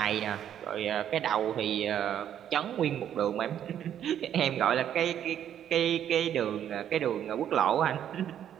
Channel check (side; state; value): left; quieter; 10.0 dB